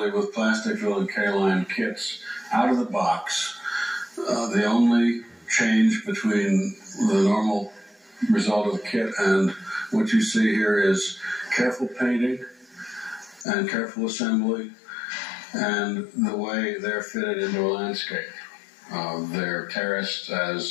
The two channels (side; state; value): right; drops out; at 13.5 s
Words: with plastic fill and K-line kits out of the box. The only change between the normal result of the kit and what you see here is careful painting and careful assembly and the way they're fitted into a landscape. They're terraced